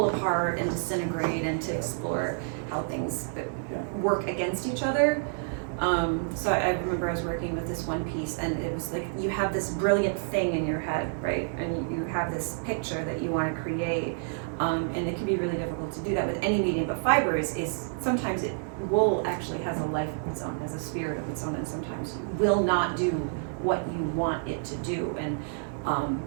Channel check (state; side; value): silent; left; digital silence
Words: apart and disintegrate and to explore how things work against each other. So I remember I was working with this one piece, and it was like you have this brilliant thing in your head, right? And you have this picture that you want to create, and it can be really difficult to do that with any medium. But fiber is sometimes wool actually has a life of its own, has a spirit of its own, and sometimes will not do what you want it to do. And